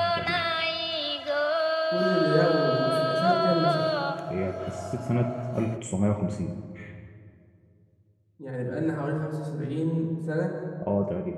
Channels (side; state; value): both; identical; correlation 1.00